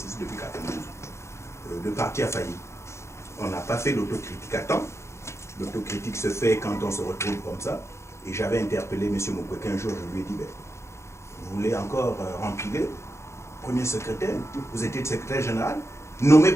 depuis 92. Le parti a failli. On n'a pas fait l'autocritique à temps. L'autocritique se fait quand on se retrouve comme ça. Et j'avais interpellé M. Mukwege un jour, je lui ai dit, ben, vous voulez encore remplir premier secrétaire, vous étiez secrétaire général, nommé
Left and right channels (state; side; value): late; right; 0.13 ms